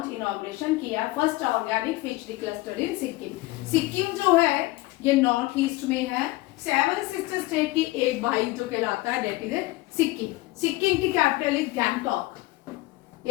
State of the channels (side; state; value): right; quieter; 20.0 dB